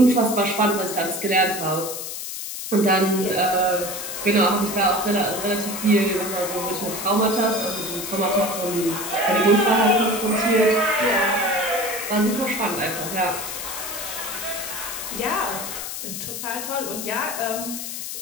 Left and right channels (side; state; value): left; noise; hiss, 7 dB below the sound